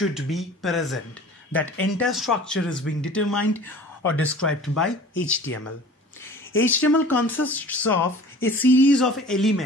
be present. That entire structure is being determined or described by HTML. HTML consists of a series of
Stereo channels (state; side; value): normal; both; correlation 0.44